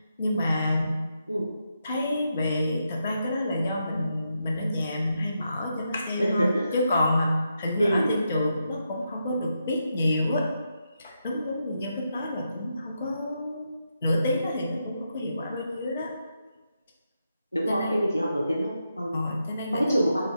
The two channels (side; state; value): both; inverted; correlation -0.84